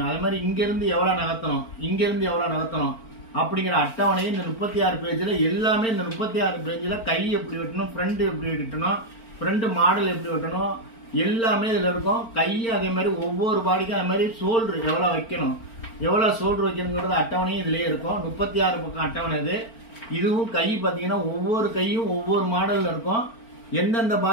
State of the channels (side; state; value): right; late; 4.4 ms